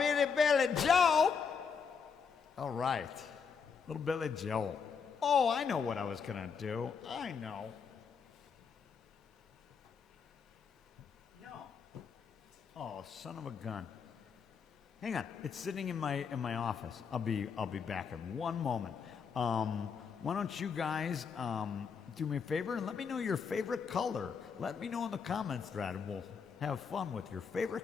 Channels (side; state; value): right; quieter; 6.1 dB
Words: Joe. All right, little Billy Joe. Oh, I know what I was gonna do. I know. No. Oh, son of a gun. Hang on, it's sitting in my office. I'll be back in one moment. Why don't you guys do me a favor and let me know your favorite color. Let me know in the comments thread, and we'll have fun with your